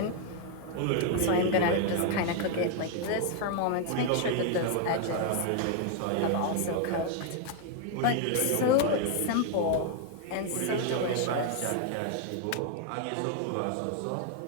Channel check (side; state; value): both; different; correlation 0.00